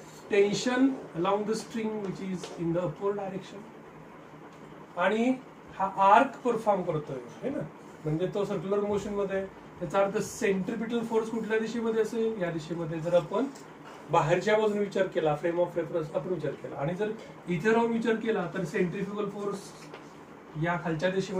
tension along the string which is in the upward direction, आणि हा arc perform करतोय है ना, म्हणजे तो सर्क्युलर मोशन मध्ये आहे. त्याचा अर्थ सेंट्रिपिटल फोर्स कुठल्या दिशेमध्ये असेल, या दिशेमध्ये. जर आपण बाहेरच्या बाजूने विचार केला, फ्रेम ऑफ रेफरन्स आपण विचार केला, आणि जर इथे राहून विचार केला तर सेंट्रिफ्युगल फोर्स या खालच्या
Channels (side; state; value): both; identical; correlation 1.00